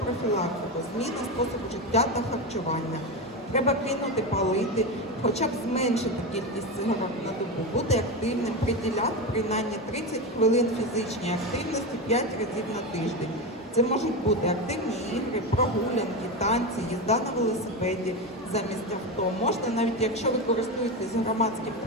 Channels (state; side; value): normal; both; correlation 0.17